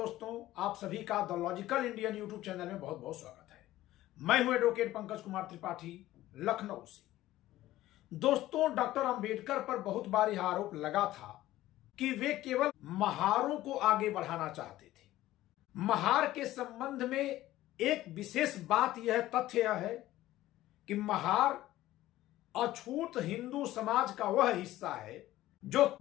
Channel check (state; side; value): quieter; right; 15.4 dB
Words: आप सभी का the logical Indian YouTube channel में बहुत बहुत स्वागत है। मैं हूं एडवोकेट पंकज कुमार त्रिपाठी, लखनऊ से। दोस्तों, डॉक्टर अंबेडकर पर बहुत बार यह आरोप लगा था कि वे केवल महारों को आगे बढ़ाना चाहते थे। महार के संबंध में एक विशेष बात यह तथ्य यह है कि महार अछूत हिंदू समाज का वह हिस्सा है जो